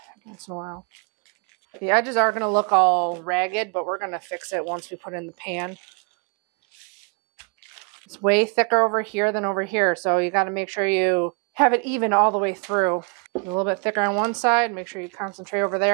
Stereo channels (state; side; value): quieter; left; 36.3 dB